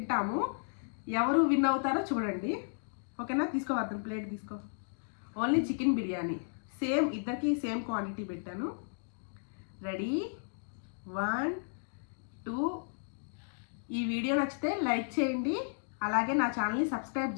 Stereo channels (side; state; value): right; silent; digital silence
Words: ఎవరు విన్ అవుతారో చూడండి. ఓకేనా? తీసుకో వర్ధన్, ప్లేట్ తీసుకో. ఓన్లీ చికెన్ బిర్యానీ ఇద్దరికి సేమ్ క్వాంటిటీ పెట్టాను. రెడీ, 1 2. ఈ వీడియో నచ్చితే లైక్ చేయండి, అలాగే నా ఛానల్ని సబ్స్క్రైబ్